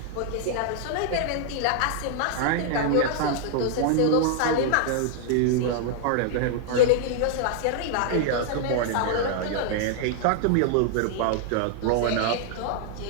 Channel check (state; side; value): different; both; correlation 0.00